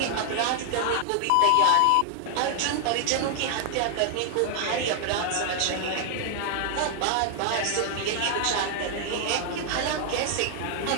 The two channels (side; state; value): both; different; correlation 0.00